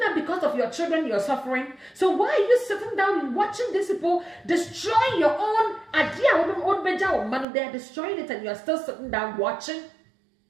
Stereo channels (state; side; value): drops out; left; at 7.5 s